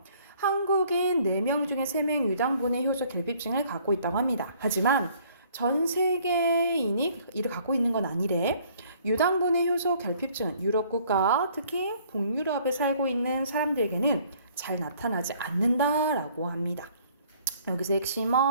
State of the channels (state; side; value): inverted; both; correlation -0.59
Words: 한국인 4명 중에 3명 유당분해 효소 결핍증을 갖고 있다고 합니다. 하지만 전 세계인이 이를 갖고 있는 건 아니래. 유당분해 효소 결핍증은 유럽 국가, 특히 북유럽에 살고 있는 사람들에게는 잘 나타나지 않는다라고 합니다. 여기서